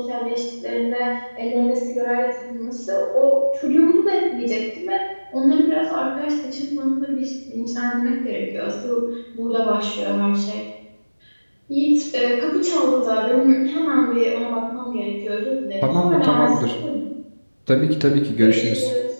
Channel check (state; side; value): inverted; both; correlation -1.00